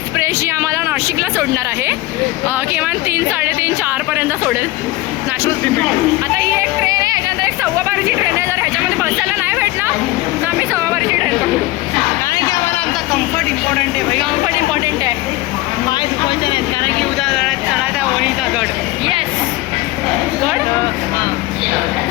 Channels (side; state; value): right; quieter; 19.0 dB